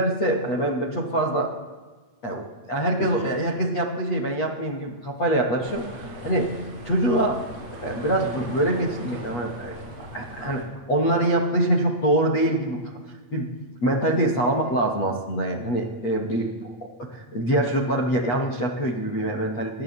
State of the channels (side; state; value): right; late; 8.3 ms